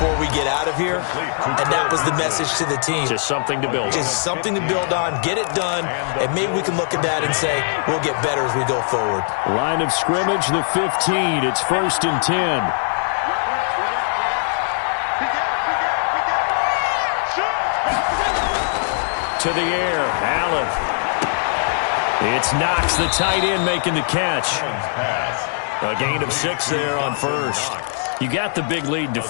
we get out of here. And that was the message to the team. Just something to build on. Just something to build on, get it done, and maybe we can look at that and say, we'll get better as we go forward. Line of scrimmage, the 15. It's 1st and 10. To the air, Allen. It's Knox, the tight end, making the catch. A gain of 6 there on first. You got the big lead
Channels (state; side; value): silent; right; digital silence